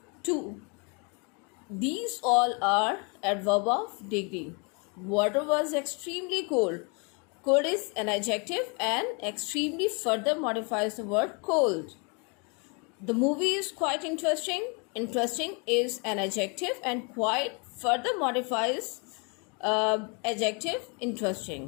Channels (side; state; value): right; quieter; 33.4 dB